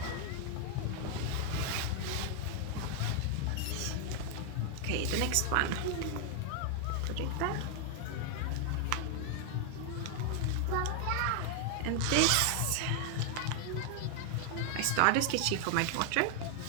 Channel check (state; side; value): different; both; correlation 0.00